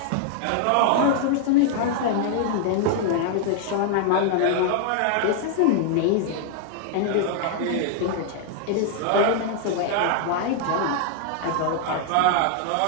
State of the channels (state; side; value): different; both; correlation 0.00